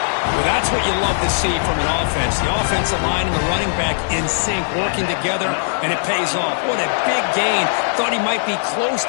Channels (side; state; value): right; silent; digital silence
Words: Well, that's what you love to see from an offense. The offensive line and the running back in sync, working together, and it pays off. What a big gain. Thought he might be close